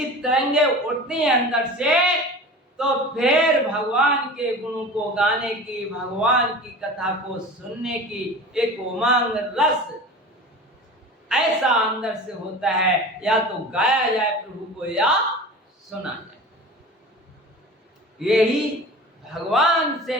तरंगे उठती हैं अंदर से, तो फिर भगवान के गुणों को गाने की, भगवान की कथा को सुनने की एक उमंग, रस ऐसा अंदर से होता है, या तो गाया जाए प्रभु को या सुना जाए। यही भगवान से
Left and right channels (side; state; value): both; normal; correlation 0.36